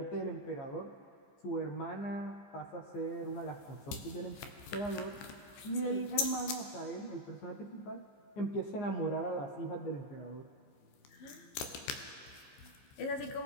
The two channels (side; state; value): right; late; 15 ms